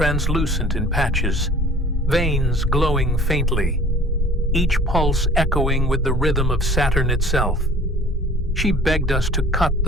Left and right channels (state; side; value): normal; both; correlation 0.48